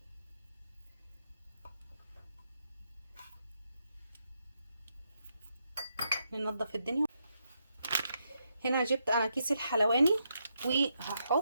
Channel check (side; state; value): both; inverted; correlation -0.81